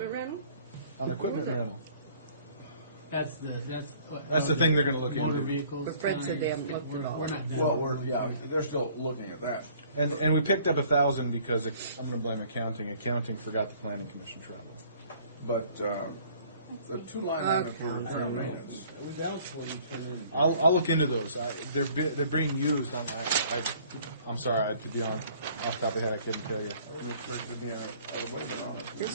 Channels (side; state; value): both; inverted; correlation -0.56